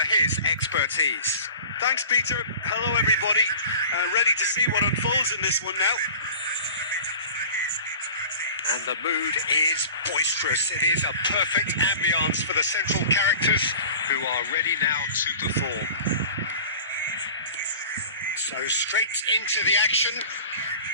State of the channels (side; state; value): both; inverted; correlation -0.40